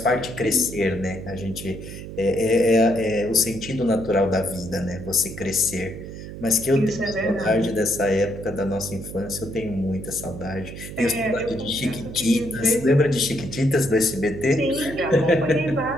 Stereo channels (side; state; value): right; noise; hum, 11 dB below the sound